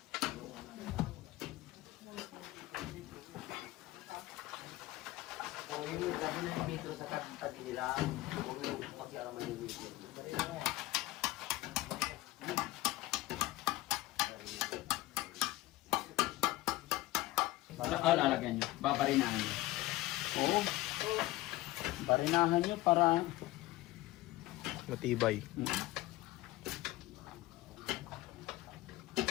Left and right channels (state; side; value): quieter; right; 18.1 dB